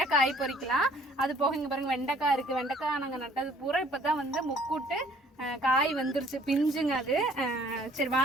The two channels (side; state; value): both; normal; correlation 0.58